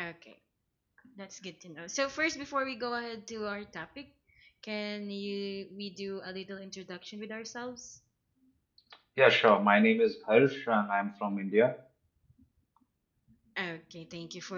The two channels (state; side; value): identical; both; correlation 1.00